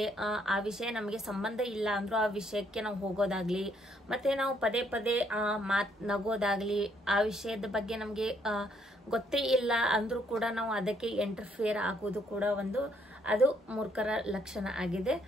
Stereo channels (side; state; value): both; normal; correlation 0.69